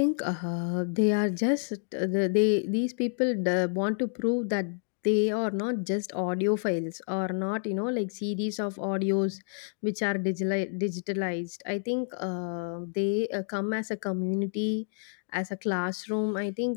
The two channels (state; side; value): silent; right; digital silence